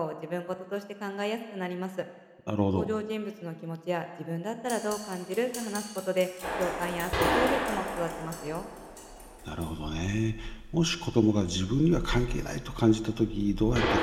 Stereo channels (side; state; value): both; identical; correlation 1.00